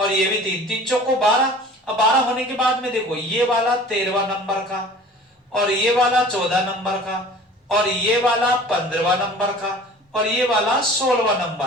ये भी 3, 3 चौको 12। अब 12 होने के बाद में देखो ये वाला 13वां नंबर का, और ये वाला 14 नंबर का, और ये वाला 15वां नंबर का, और ये वाला 16वां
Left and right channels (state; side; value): normal; both; correlation 0.44